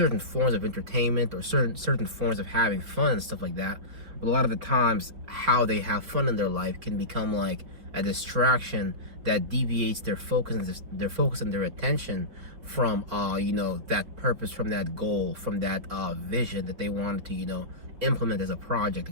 forms of entertainment or certain forms of having fun and stuff like that. But a lot of the times how they have fun in their life can become like a distraction that deviates their focus and their attention from that purpose, from that goal, from that vision that they wanted to implement as a project,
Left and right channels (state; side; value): late; left; 4.6 ms